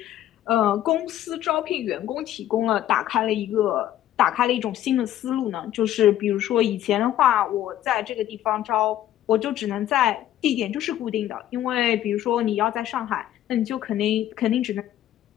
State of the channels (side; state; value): right; quieter; 12.5 dB